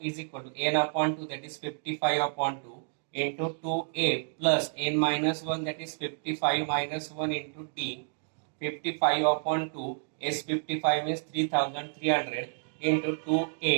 equal to n upon 2, that is 55 upon 2 into 2a plus n minus 1, that is 55 minus 1 into t. 55 upon 2, S55 is 3300 into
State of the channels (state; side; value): silent; left; digital silence